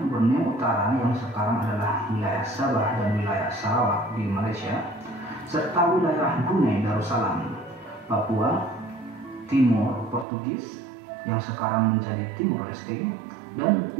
Borneo Utara yang sekarang adalah wilayah Sabah dan wilayah Sarawak di Malaysia, serta wilayah Brunei Darussalam, Papua Timur Portugis yang sekarang menjadi Timor Leste, dan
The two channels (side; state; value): left; drops out; at 10.2 s